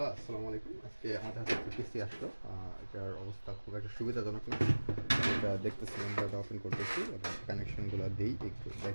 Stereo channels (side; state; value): both; inverted; correlation -1.00